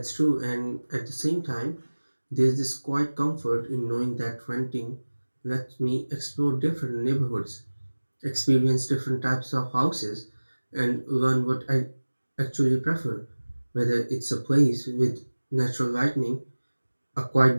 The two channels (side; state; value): both; inverted; correlation -1.00